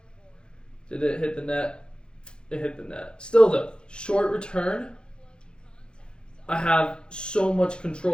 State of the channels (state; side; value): late; right; 0.050 ms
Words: did it hit the net? It hit the net. Still though, short return, I have so much